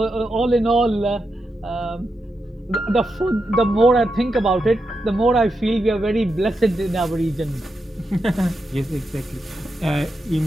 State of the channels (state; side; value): normal; both; correlation 0.86